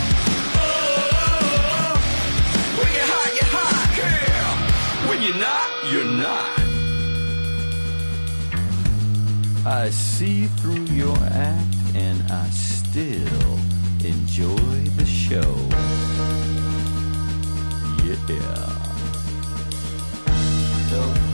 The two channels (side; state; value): both; inverted; correlation -1.00